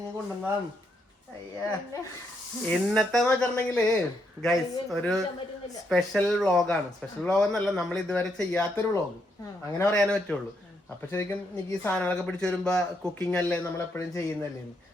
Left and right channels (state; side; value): normal; both; correlation 0.77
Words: കൊണ്ടുവന്നതാണ്. അയ്യാ, ഇന്നത്തെ വെച്ചിട്ടുണ്ടെങ്കില് ഗൈസ് ഒരു സ്പെഷ്യൽ വ്ളോഗാണ്. സ്പെഷ്യൽ വ്ളോഗ് എന്നല്ല, നമ്മൾ ഇതുവരെ ചെയ്യാത്തൊരു വ്ളോഗ്, അങ്ങനെ പറയാനേ പറ്റുള്ളൂ. അപ്പൊ ശരിക്കും എനിക്ക് ഈ സാധനങ്ങളൊക്കെ പിടിച്ചു വരുമ്പോ കുക്കിംഗ് അല്ലേ നമ്മൾ എപ്പോഴും ചെയ്യുന്നല്ലേ,